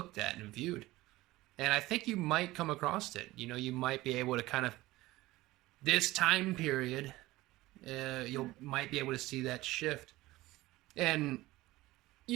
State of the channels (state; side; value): quieter; left; 18.3 dB